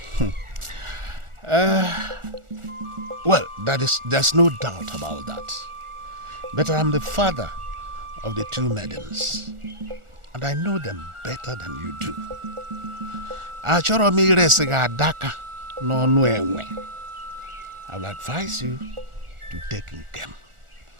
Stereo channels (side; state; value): left; late; 1.4 ms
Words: Well, there's no doubt about that. But I'm the father of the two maidens, and I know them better than you do. Achoro mi resega adaka no enwe. I will advise you to take Nkem.